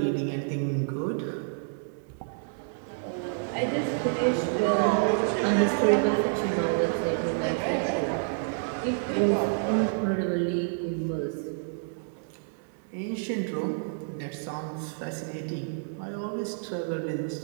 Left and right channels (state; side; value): silent; left; digital silence